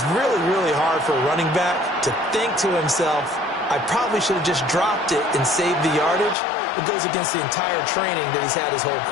really, really hard for a running back to think to himself, I probably should have just dropped it and saved the yardage. It goes against the entire training that he's had his whole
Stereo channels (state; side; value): drops out; right; at 6.4 s